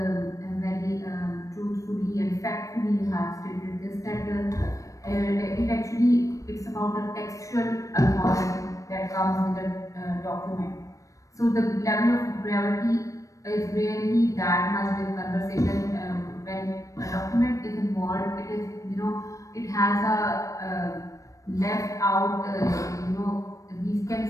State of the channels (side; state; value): right; late; 0.16 ms